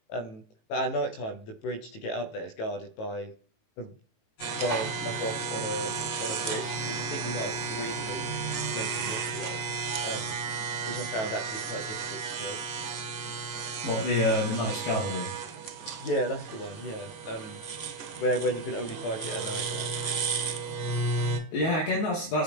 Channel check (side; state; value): right; late; 18 ms